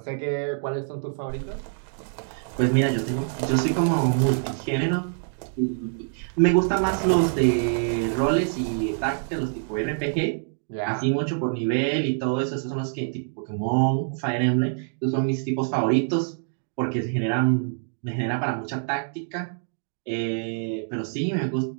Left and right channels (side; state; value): left; silent; digital silence